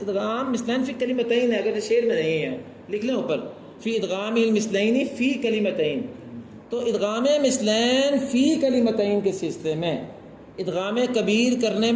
ادغام مثلین فی کلمتین ہے. اگر شعر میں نہیں ہے لکھ لیں اوپر، فی ادغام المثلین فی کلمتین. تو ادغام مثلین فی کلمتین کے سلسلے میں ادغام کبیر کرنے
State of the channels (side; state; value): both; identical; correlation 1.00